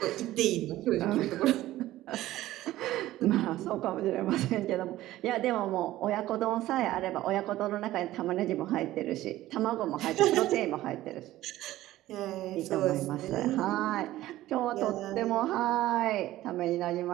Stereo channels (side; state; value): left; quieter; 15.4 dB